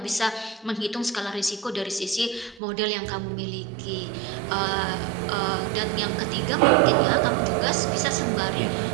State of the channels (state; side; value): drops out; left; at 2.6 s